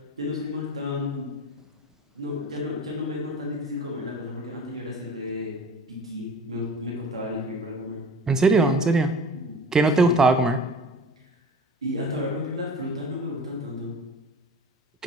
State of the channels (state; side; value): normal; both; correlation 0.41